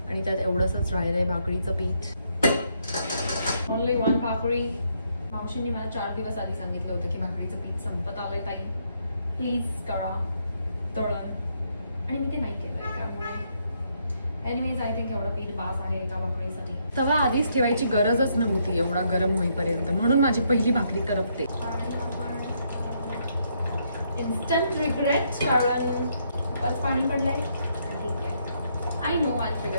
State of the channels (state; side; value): inverted; both; correlation -0.74